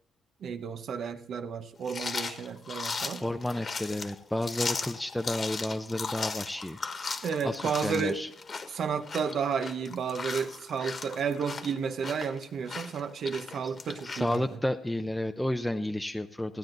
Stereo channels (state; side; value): normal; both; correlation 0.83